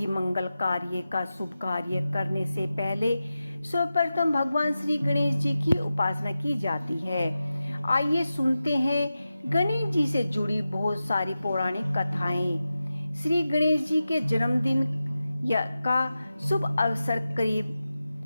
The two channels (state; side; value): inverted; both; correlation -0.93